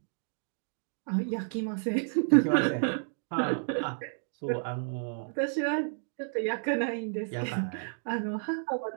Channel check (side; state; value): left; silent; digital silence